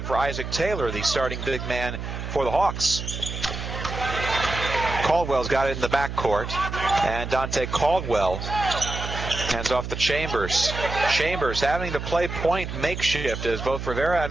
for Isaac Taylor, the starting big man for the Hawks. Caldwell's got it in the backcourt, and Dante Caldwell hands off to Chambers. Chambers having to play point makeshift as both Rivera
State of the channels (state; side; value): noise; right; hum, 6 dB below the sound